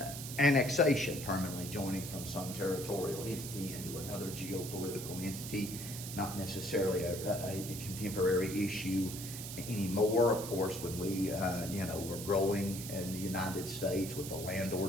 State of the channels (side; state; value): right; noise; hiss, 9 dB below the sound